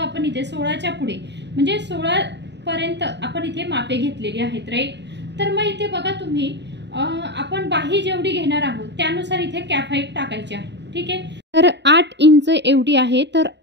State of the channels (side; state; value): left; late; 0.51 ms